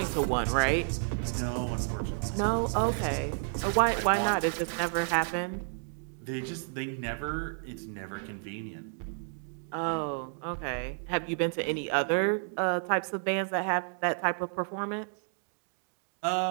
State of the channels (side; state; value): left; silent; digital silence